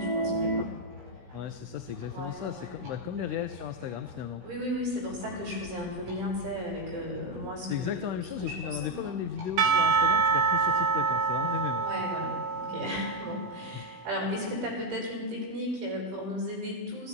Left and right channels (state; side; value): late; left; 17 ms